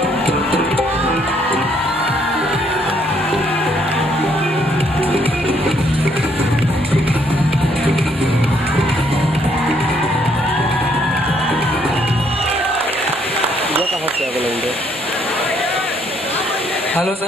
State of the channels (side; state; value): both; normal; correlation 0.69